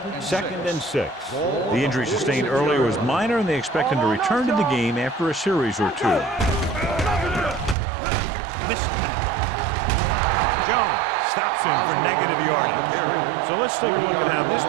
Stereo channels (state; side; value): drops out; left; at 7.8 s